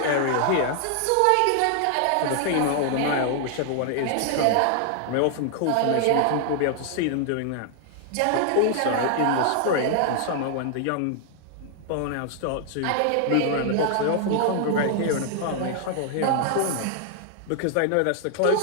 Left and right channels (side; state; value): both; different; correlation 0.00